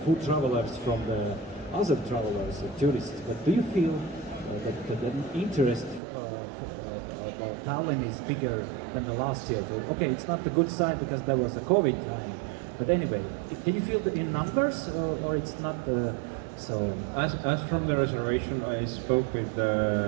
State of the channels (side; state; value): left; drops out; at 6.0 s